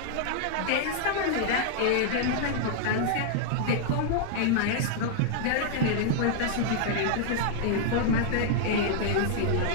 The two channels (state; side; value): different; both; correlation -0.01